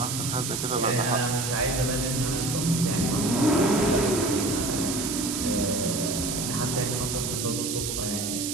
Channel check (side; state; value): right; noise; hiss, 3 dB below the sound